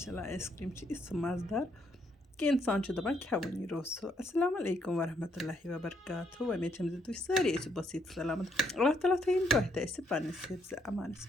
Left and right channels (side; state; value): both; normal; correlation 0.72